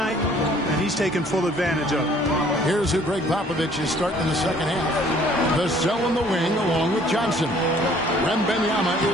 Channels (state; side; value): normal; both; correlation 0.58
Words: and he's taken full advantage of it. Here's who Greg Popovich is starting in the second half. Vassell in the wing along with Johnson. Wembanyama